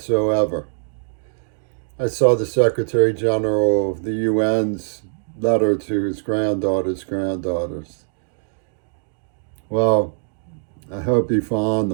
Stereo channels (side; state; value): left; silent; digital silence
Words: I saw the Secretary General of the UN's letter to his granddaughters. Well, I hope he found